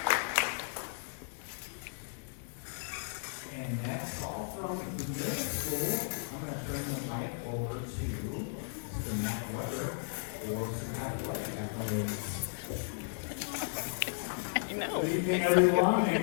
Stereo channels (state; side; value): silent; right; digital silence